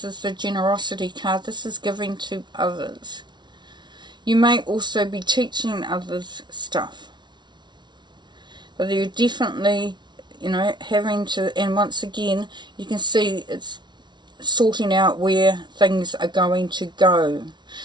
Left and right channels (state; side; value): late; left; 0.21 ms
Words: is the generosity card. This is giving to others. You may also be teaching others stuff. But you're definitely, having to, and once again, you can see it's sorting out where things are going to go.